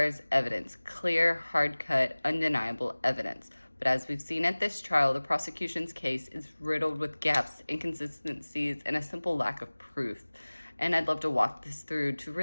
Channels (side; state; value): both; inverted; correlation -1.00